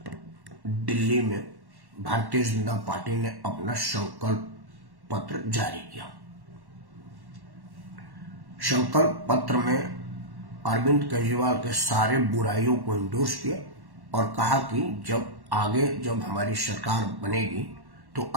दिल्ली में भारतीय जनता पार्टी ने अपना संकल्प पत्र जारी किया। संकल्प पत्र में अरविंद केजरीवाल के सारे बुराइयों को इंडोर्स किया और कहा कि जब हमारी सरकार बनेगी तो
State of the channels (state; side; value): late; left; 1.1 ms